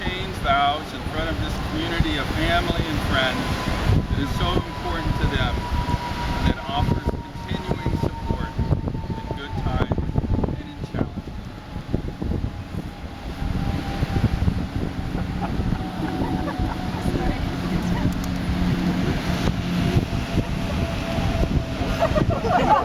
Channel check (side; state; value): both; identical; correlation 1.00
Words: vows in front of this community of family and friends that is so important to them and that offers continuing support in good times and in challenges.